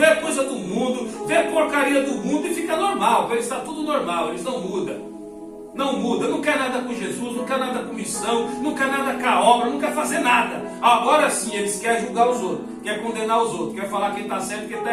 coisa do mundo, vê porcaria do mundo e fica normal. Para eles está tudo normal, eles não mudam. Não muda, não quer nada com Jesus, não quer nada com missão, não quer nada com a obra, não quer fazer nada. Agora sim, eles querem julgar os outros, quer condenar os outros, quer falar quem está certo e quem está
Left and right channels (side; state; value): both; identical; correlation 1.00